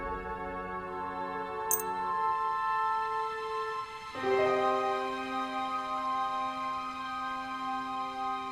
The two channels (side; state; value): right; noise; rumble, 21 dB below the sound